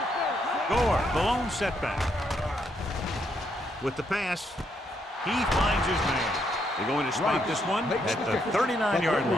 play. Gore, the lone setback. With the pass, he finds his man. They're going to spike this one at the 39-yard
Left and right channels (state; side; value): normal; both; correlation 0.76